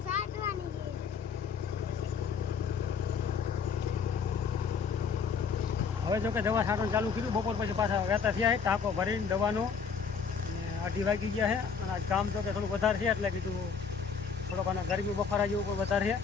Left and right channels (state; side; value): quieter; right; 6.1 dB